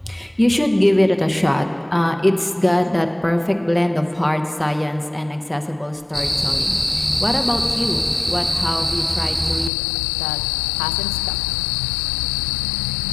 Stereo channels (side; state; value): right; drops out; at 9.7 s